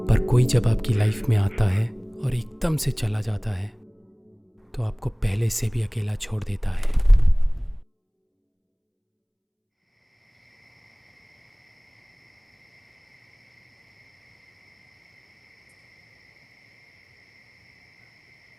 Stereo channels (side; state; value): both; identical; correlation 1.00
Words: पर कोई जब आपकी लाइफ में आता है और एकदम से चला जाता है तो आपको पहले से भी अकेला छोड़ देता है।